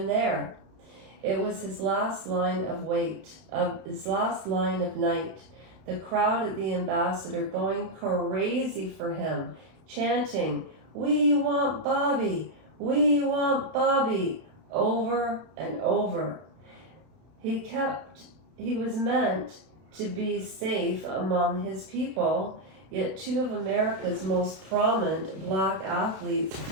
there." It was his last line of night. The crowd at the Ambassador going crazy for him, chanting, "We want Bobby! We want Bobby!" over and over. He was meant to be safe among his people, yet two of America's most prominent black athletes,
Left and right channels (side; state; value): left; late; 32 ms